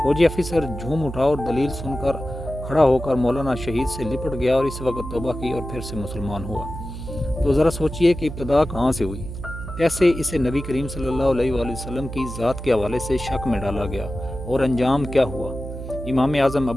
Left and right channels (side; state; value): right; noise; hum, 9 dB below the sound